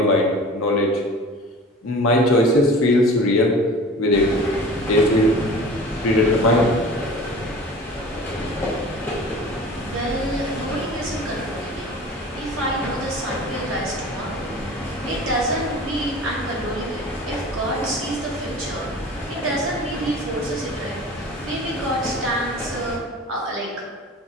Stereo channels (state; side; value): normal; both; correlation 0.40